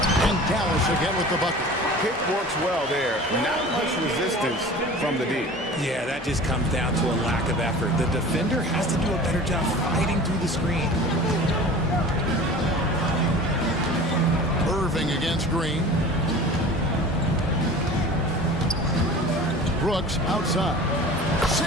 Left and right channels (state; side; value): normal; both; correlation 0.40